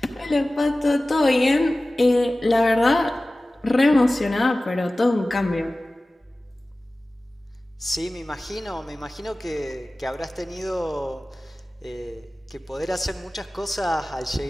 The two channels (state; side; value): normal; both; correlation 0.97